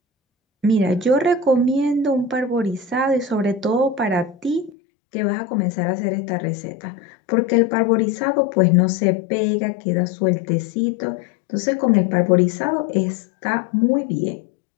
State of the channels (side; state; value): right; drops out; at 4.7 s